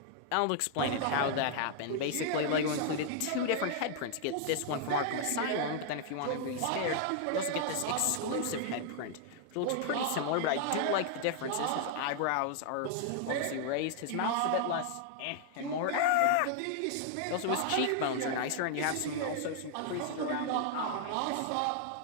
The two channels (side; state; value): both; different; correlation 0.00